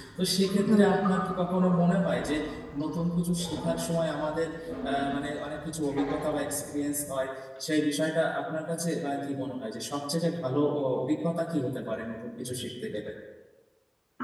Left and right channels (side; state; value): both; identical; correlation 1.00